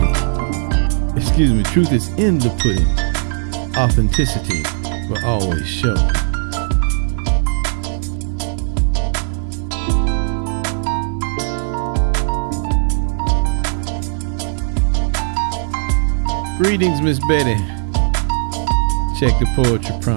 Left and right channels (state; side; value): silent; left; digital silence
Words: Truth is in the pudding. Authenticity will always show. Greetings, Miss Betty. Check the poetry